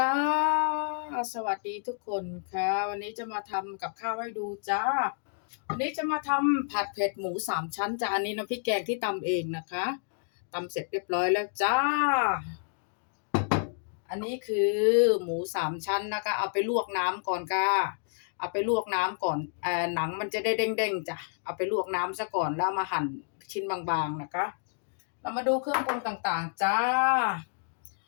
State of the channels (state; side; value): silent; right; digital silence